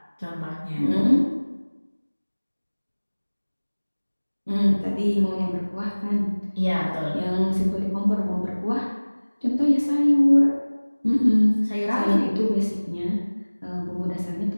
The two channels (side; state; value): both; inverted; correlation -1.00